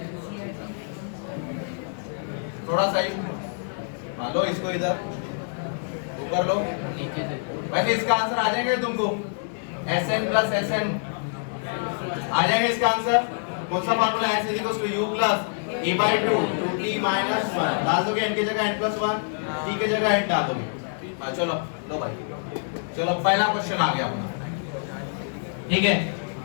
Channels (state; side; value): silent; right; digital silence